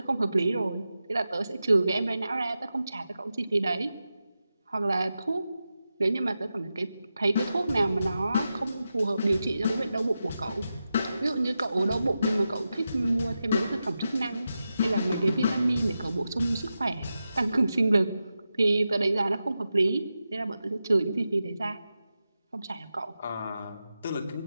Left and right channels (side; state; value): both; inverted; correlation -0.90